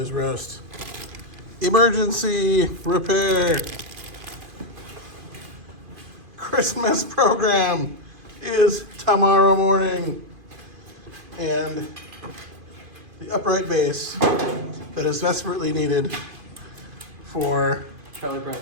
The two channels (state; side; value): late; left; 2.5 ms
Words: Roast. Emergency repair. Christmas program is tomorrow morning. And the upright base that is desperately needed for